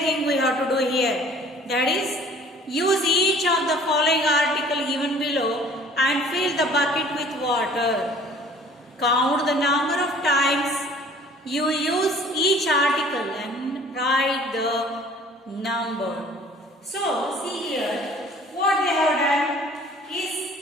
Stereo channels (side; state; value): both; normal; correlation 0.51